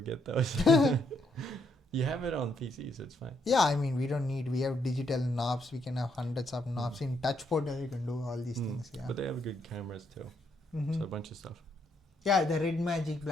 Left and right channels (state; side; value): normal; both; correlation 0.74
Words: get those. You have it on PC, so it's fine. Yeah, I mean, we have digital knobs. We can have hundreds of knobs. In touchpad, you can do all these things. Yeah. But they have good cameras too. Mhm. So a bunch of stuff. Yeah, the red magic,